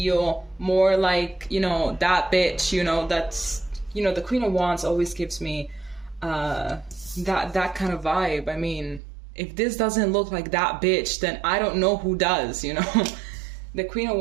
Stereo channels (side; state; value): left; drops out; at 9.0 s